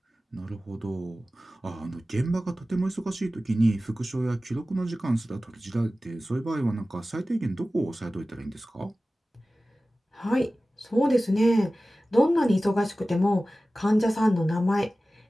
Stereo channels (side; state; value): both; normal; correlation 0.96